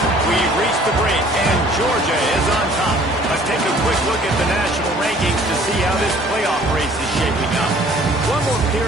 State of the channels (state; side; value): normal; both; correlation 0.54